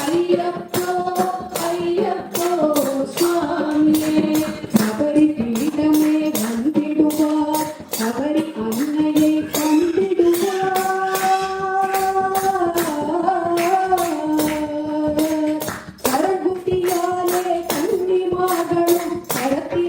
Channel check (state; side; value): identical; both; correlation 1.00